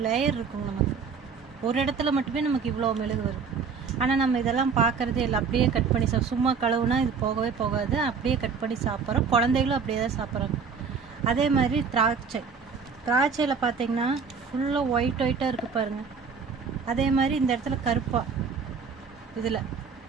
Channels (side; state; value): left; quieter; 5.6 dB